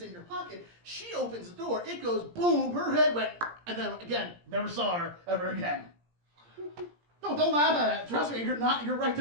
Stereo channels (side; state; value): left; late; 17 ms